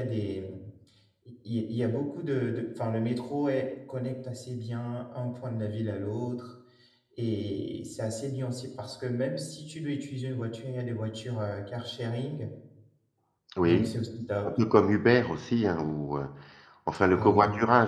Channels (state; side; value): identical; both; correlation 1.00